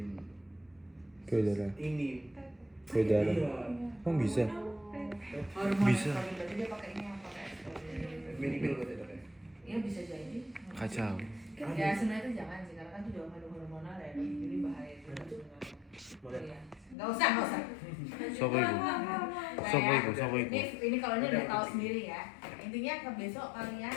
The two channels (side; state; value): right; drops out; at 16.9 s